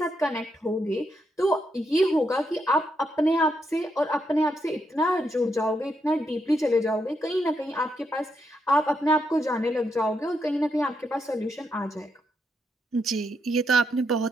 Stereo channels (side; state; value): both; normal; correlation 0.80